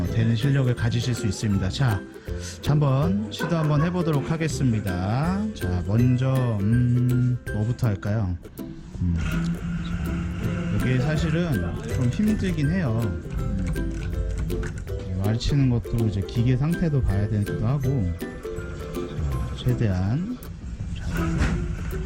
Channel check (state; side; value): identical; both; correlation 1.00